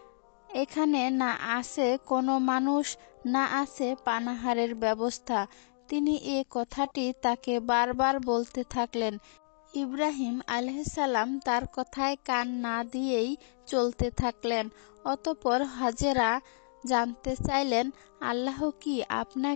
এখানে না আছে কোনো মানুষ, না আছে পানাহারের ব্যবস্থা। তিনি এ কথাটি তাকে বারবার বলতে থাকলেন। ইব্রাহিম আলাইহিস সালাম তার কথায় কান না দিয়েই চলতে থাকলেন। অতঃপর হাজেরা জানতে চাইলেন, আল্লাহ কি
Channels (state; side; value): silent; right; digital silence